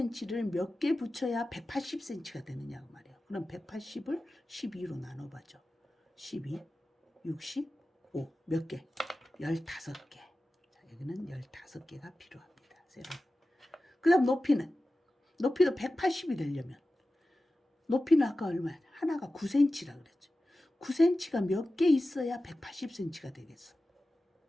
몇 개 붙여야 180cm가 되느냐고 말이에요. 그럼 180을 12로 나눠봐죠. 12, 65, 몇 개? 15개. 자, 여기는 15개가 필요합니다. 세로. 그 다음 높이도 180이 되려면 높이는 아까 얼마야? 하나가 9cm라 그랬죠. 9cm가 몇 개 있어야 180cm가 되겠어.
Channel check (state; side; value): normal; both; correlation 0.95